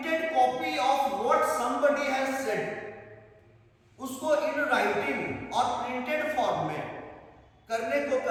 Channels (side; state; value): both; identical; correlation 1.00